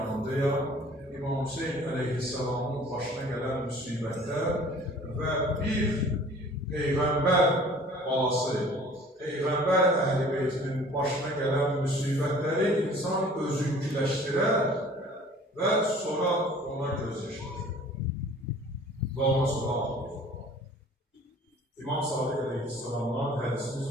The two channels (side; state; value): both; normal; correlation 0.49